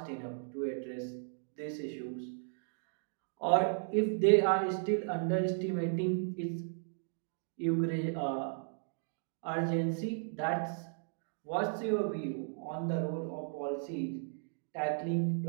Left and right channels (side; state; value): left; silent; digital silence